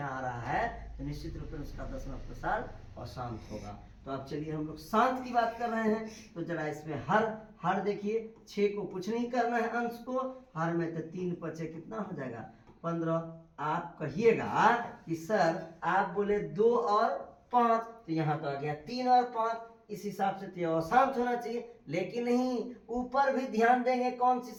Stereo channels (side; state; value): both; identical; correlation 1.00